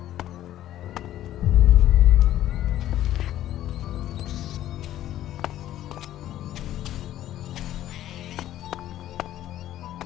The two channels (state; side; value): quieter; right; 12.9 dB